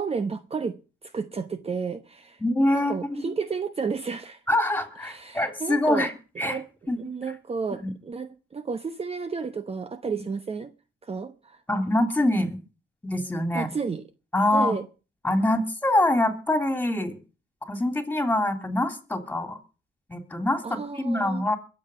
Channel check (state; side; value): normal; both; correlation 0.78